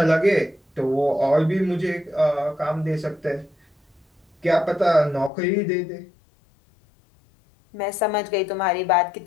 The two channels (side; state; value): right; drops out; at 5.3 s